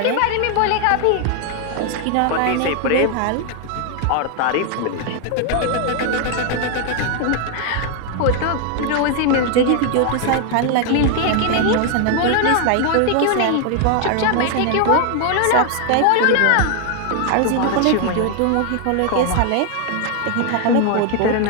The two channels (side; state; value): both; different; correlation 0.00